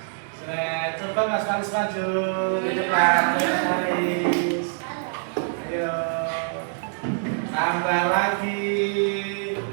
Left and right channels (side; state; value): left; silent; 62 dB below the other